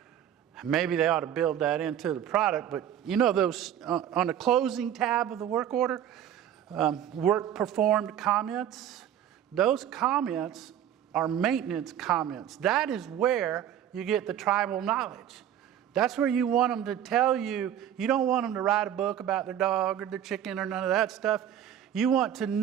Maybe they ought to build that into the product, but you know those on the closing tab of the work order, work performed comments, those comments are maintenance comments. That is where you get the tribal knowledge. That's where you want them to tell you. You don't want them to write a book about their dog or their chicken or none of that stuff. You want to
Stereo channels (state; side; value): quieter; left; 10.3 dB